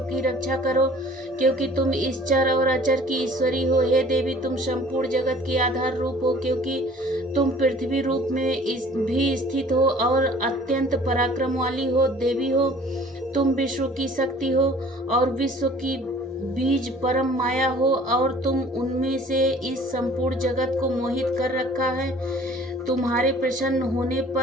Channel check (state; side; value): normal; both; correlation 0.51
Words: रक्षा करो, क्योंकि तुम इस चर और अचर की ईश्वरी हो। हे देवी, तुम संपूर्ण जगत की आधार रूप हो, क्योंकि तुम पृथ्वी रूप में भी स्थित हो और अत्यंत पराक्रम वाली हो। देवी हो, तुम विश्व की शक्ति हो और विश्व की बीज परम माया हो, और तुम उनमें से इस संपूर्ण जगत को मोहित कर रखा है। तुम्हारे प्रसन्न होने